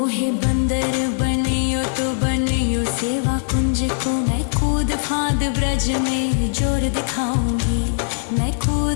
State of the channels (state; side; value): silent; right; 65 dB below the other